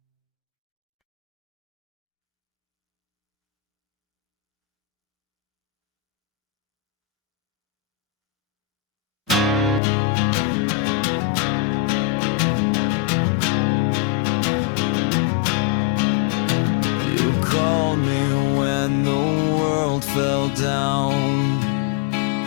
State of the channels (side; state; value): right; drops out; at 9.8 s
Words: You called me when the world fell down.